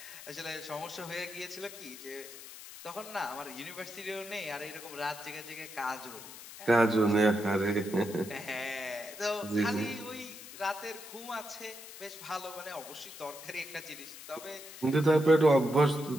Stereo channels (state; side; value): noise; left; hiss, 14 dB below the sound